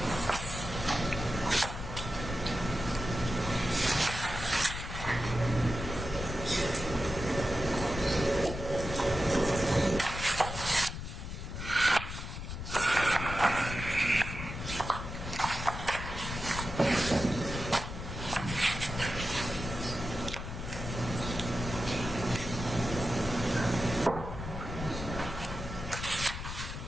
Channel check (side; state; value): left; noise; rumble, 7 dB below the sound